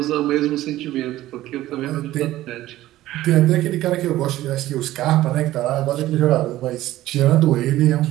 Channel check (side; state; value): left; quieter; 15.2 dB